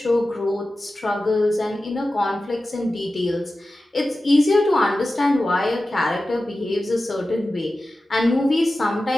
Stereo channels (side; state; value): both; normal; correlation 0.94